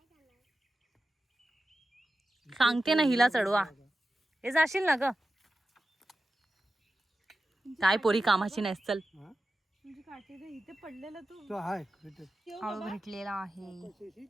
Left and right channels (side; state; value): both; normal; correlation 0.93